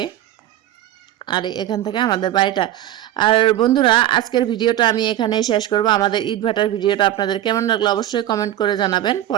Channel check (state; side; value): quieter; left; 13.1 dB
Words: আর এখান থেকে আমাদের বাড়িটা। আর বন্ধুরা, আজকের ভিডিওটা আমি এখানেই শেষ করব। আমাদের ইট ভাটার ভিডিওটা আপনাদের কেমন লাগলো অবশ্যই কমেন্ট করে জানাবেন।